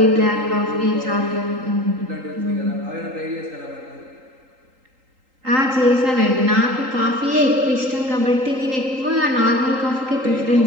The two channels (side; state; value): left; late; 3.8 ms